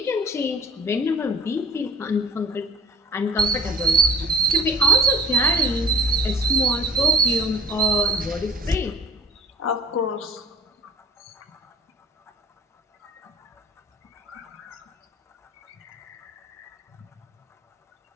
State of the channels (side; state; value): both; normal; correlation 0.44